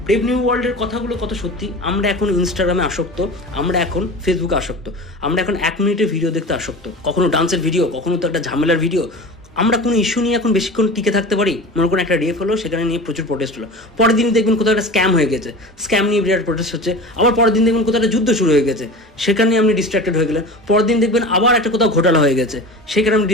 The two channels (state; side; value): normal; both; correlation 0.34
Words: ব্রেভ নিউ ওয়ার্ল্ডের কথাগুলো কত সত্যি। আমরা এখন ইনস্টাগ্রামে আসক্ত, আমরা এখন ফেসবুকে আসক্ত, আমরা এখন 1 মিনিটের ভিডিও দেখতে আসক্ত, কখনো ডান্সের ভিডিও, কখনো তো একটা ঝামেলার ভিডিও। আমরা কোনো ইস্যু নিয়ে এখন বেশিক্ষণ টিকে থাকতে পারি? মনে করুন একটা রেপ হলো, সেখানে নিয়ে প্রচুর প্রোটেস্ট হলো, পরের দিন দেখবেন কোথাও একটা স্ক্যাম হয়ে গেছে, স্ক্যাম নিয়ে বিরাট প্রোটেস্ট হচ্ছে, আবার পরের দিন দেখবেন কোথাও একটা যুদ্ধ শুরু হয়ে গেছে, সেখানে আপনি ডিস্ট্র্যাক্টেড হয়ে গেলেন, পরের দিন দেখবেন আবার একটা কোথাও ঘোটালা হয়ে গেছে, সেখানে আপনি